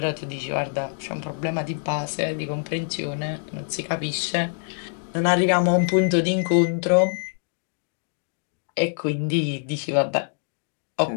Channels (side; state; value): right; silent; 62 dB below the other